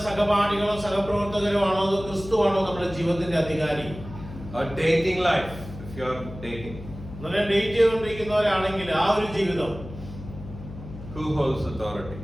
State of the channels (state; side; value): noise; left; hum, 13 dB below the sound